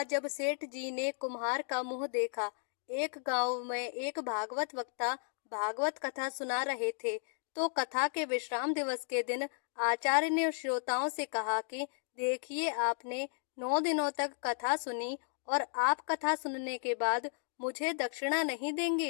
जब सेठ जी ने कुम्हार का मुंह देखा। एक गांव में एक भागवत वक्ता भागवत कथा सुना रहे थे। तो कथा के विश्राम दिवस के दिन आचार्य ने श्रोताओं से कहा कि देखिए, आपने 9 दिनों तक कथा सुनी और आप कथा सुनने के बाद मुझे दक्षिणा नहीं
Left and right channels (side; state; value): right; silent; digital silence